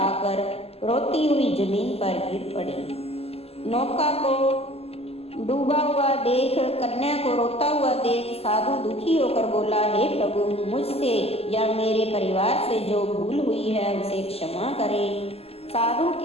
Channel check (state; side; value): late; right; 0.29 ms